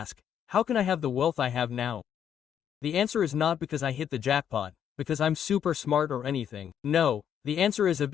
how can I have the wealth I have now? The answer is not because I hit the jackpot, because I'm super smart or anything. No, the answer is I've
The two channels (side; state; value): right; quieter; 9.0 dB